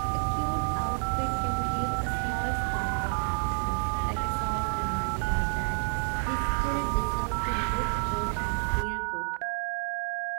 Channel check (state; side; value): silent; left; 58 dB below the other